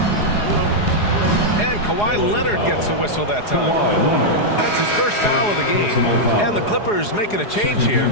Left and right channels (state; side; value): late; right; 4.8 ms